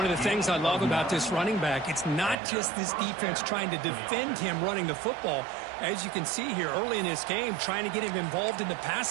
of the things I love about this running back, it's not just this defense trying to defend him running the football. As you can see here early in this game, trying to get him involved in the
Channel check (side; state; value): left; drops out; at 2.4 s